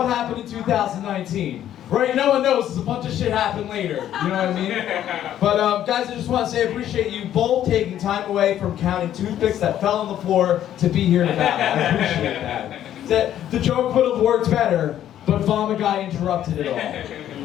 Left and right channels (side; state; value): right; quieter; 11.3 dB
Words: happened in 2019? Right? No one knows. There's a bunch of shit happened later. You know what I mean? But guys, I just want to say I appreciate you both taking time away from counting toothpicks that fell on the floor to be here to battle. I appreciate that. The joke would have worked better, but Vomit Guy interrupted it all.